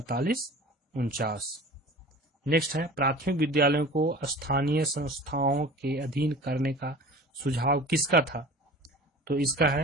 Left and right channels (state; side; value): normal; both; correlation 0.40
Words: 49। नेक्स्ट है, प्राथमिक विद्यालयों को स्थानीय संस्थाओं के अधीन करने का सुझाव किसका था? तो इसका